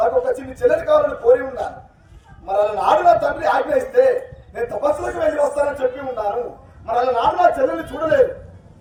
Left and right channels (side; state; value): both; identical; correlation 1.00